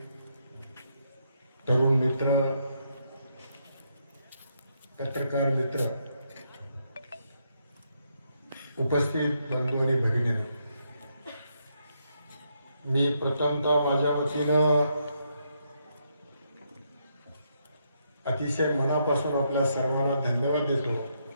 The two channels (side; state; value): both; inverted; correlation -0.77